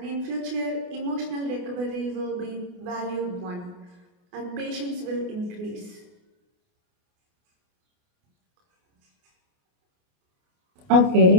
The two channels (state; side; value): late; left; 28 ms